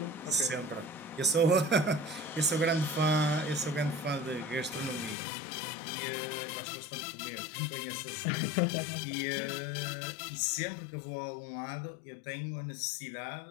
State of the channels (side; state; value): right; drops out; at 5.2 s